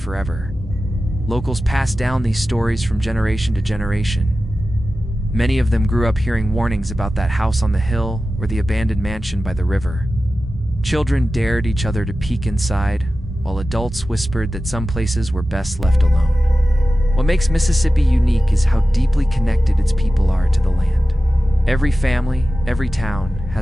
Locals pass down these stories from generation to generation. Many of them grew up hearing warnings about that house on the hill or the abandoned mansion by the river. Children dared each other to peek inside, while adults whispered that some places were best left alone. What makes Mississippi unique is how deeply connected its people are to the land. Every family, every town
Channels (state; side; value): normal; both; correlation 0.94